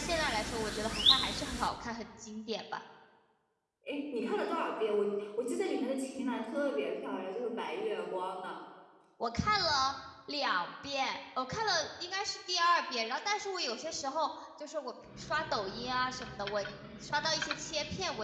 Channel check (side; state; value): both; identical; correlation 1.00